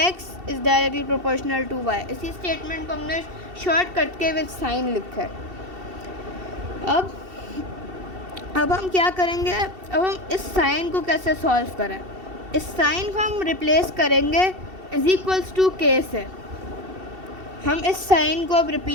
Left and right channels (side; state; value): left; late; 2.7 ms